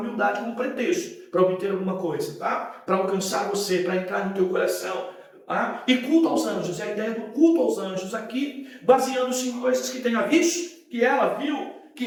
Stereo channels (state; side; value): identical; both; correlation 1.00